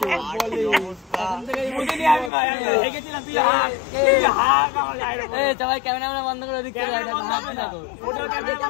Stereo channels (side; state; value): right; drops out; at 2.3 s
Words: ক্যামেরা বন্ধ করে